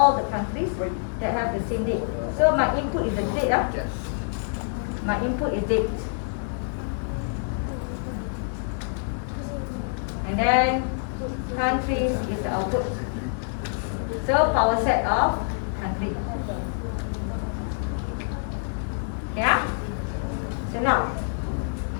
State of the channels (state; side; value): silent; right; digital silence